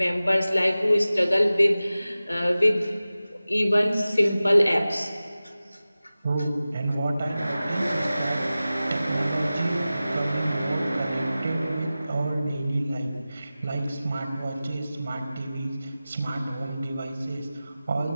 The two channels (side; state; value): both; inverted; correlation -0.96